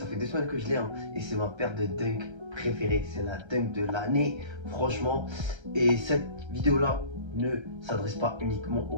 fait 2 semaines que je l'ai, hein, et c'est ma paire de Dunk préférée. C'est la Dunk de l'année, franchement. Et cette vidéo-là ne s'adresse pas uniquement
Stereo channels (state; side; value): late; left; 1.3 ms